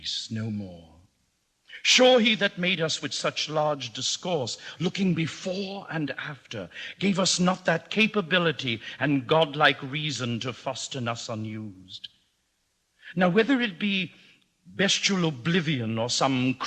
no more. Sure, he that made us with such large discourse, looking before and after, gave us not that capability and godlike reason to fasten us unused. Now, whether it be bestial oblivion or some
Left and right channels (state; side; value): identical; both; correlation 1.00